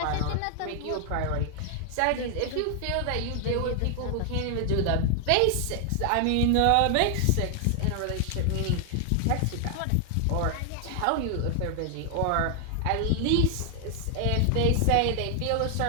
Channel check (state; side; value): different; both; correlation 0.00